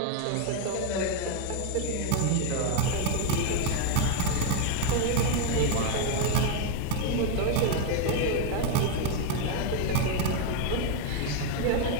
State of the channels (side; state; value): both; different; correlation 0.01